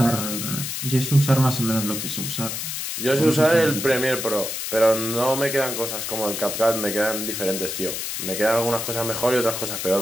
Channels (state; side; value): noise; left; hiss, 4 dB below the sound